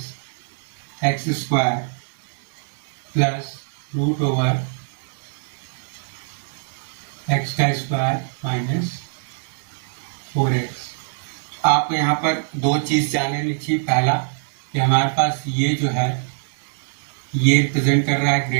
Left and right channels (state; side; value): silent; left; 62 dB below the other